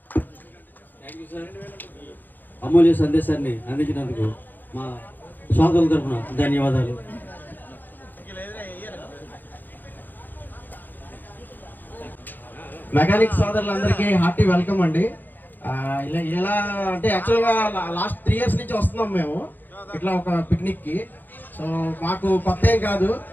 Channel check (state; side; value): late; right; 0.088 ms